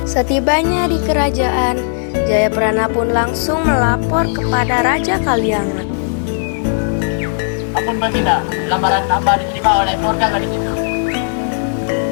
Setibanya di kerajaan, Jayaprana pun langsung melapor kepada Raja Kaliangat. Ampun Baginda, lamaran hamba diterima oleh keluarga gadis itu.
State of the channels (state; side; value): silent; right; digital silence